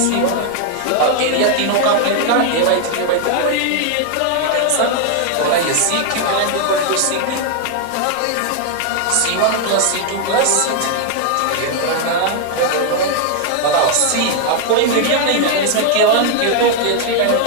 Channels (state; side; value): different; both; correlation 0.00